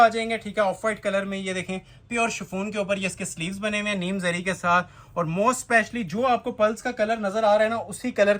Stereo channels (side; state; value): both; identical; correlation 1.00